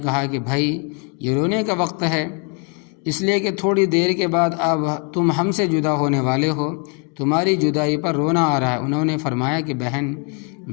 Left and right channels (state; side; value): quieter; right; 36.4 dB